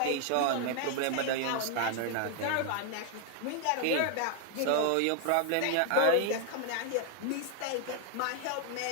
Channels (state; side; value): different; both; correlation 0.00